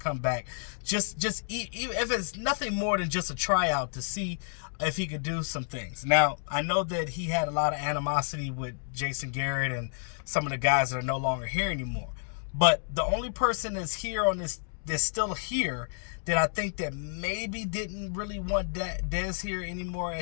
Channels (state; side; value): silent; right; digital silence